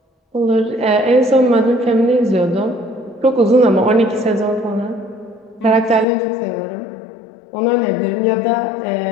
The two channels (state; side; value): drops out; right; at 6.1 s